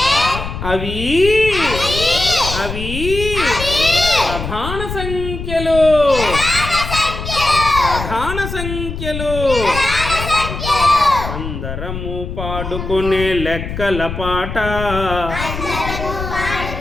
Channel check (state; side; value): noise; left; rumble, 7 dB below the sound